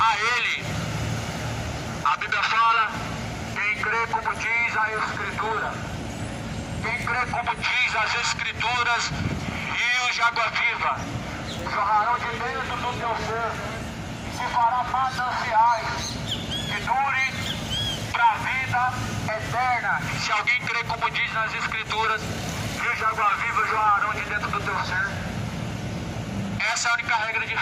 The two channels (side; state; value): both; identical; correlation 1.00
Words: ele. A Bíblia fala, quem crê como diz a Escritura. Quem crê como diz as Escrituras, rios de água viva jorrarão de dentro do teu ser. Se fará mananciais que dure para a vida eterna. Se alguém crê como diz nas Escrituras, rios de água viva jorrarão de dentro do teu ser. Essa é a única regra de